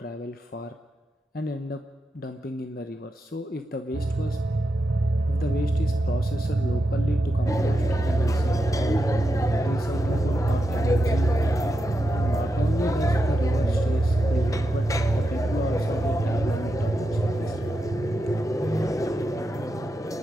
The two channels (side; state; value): both; normal; correlation 0.87